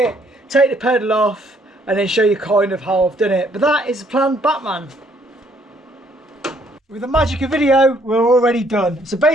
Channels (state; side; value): normal; both; correlation 0.66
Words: take the pedal off, and then show you kind of how I've done it. But that is the plan, Batman. With the magic of video, we're already done. So